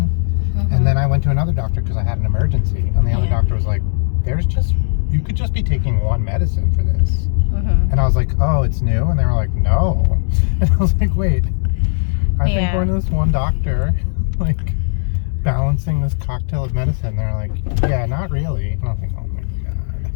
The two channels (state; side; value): silent; right; 68 dB below the other